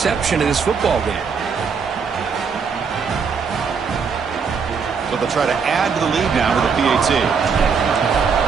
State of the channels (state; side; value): quieter; left; 5.8 dB